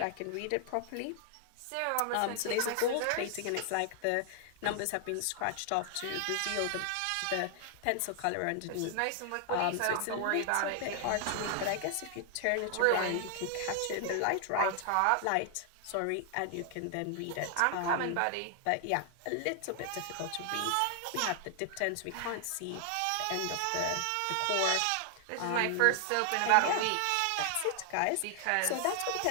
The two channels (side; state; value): both; different; correlation 0.00